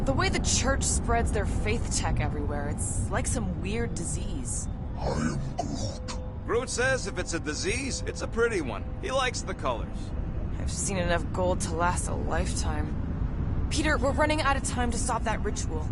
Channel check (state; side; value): identical; both; correlation 1.00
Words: The way the church spreads their faith tech everywhere, it's like some weird disease. I am Groot. Groot says if it's a disease, it's a pretty one. He likes the colors. I've seen enough gold to last a lifetime. Peter, we're running out of time to stop that ritual.